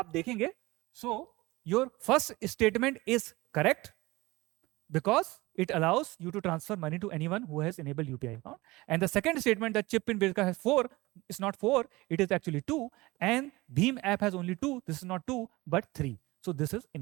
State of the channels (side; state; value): left; quieter; 20.9 dB